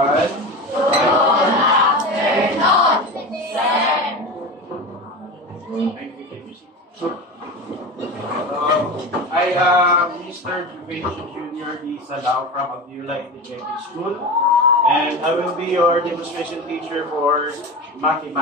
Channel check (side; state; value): both; normal; correlation 0.27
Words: I am Mr. Juvencio Jr. D. Salao from Abdullah Integrated School, and I will be your demonstration teacher for